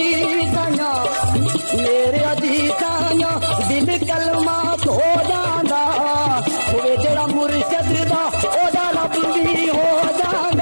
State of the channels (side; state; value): both; inverted; correlation -1.00